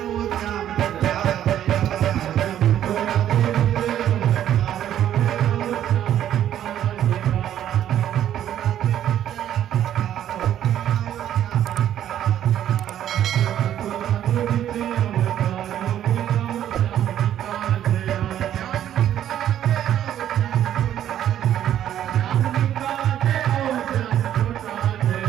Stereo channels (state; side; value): quieter; left; 11.0 dB